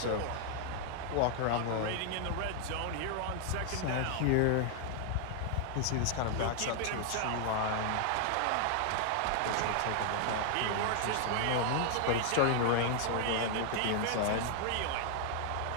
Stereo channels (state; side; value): different; both; correlation 0.00